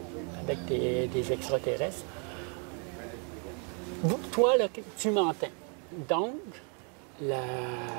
avec des extraterrestres, toi, là, tu m'entends. Donc,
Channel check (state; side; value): quieter; left; 38.3 dB